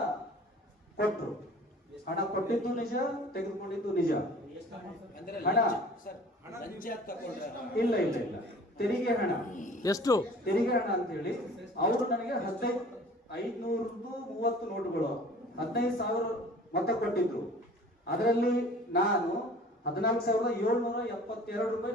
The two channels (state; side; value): normal; both; correlation 0.47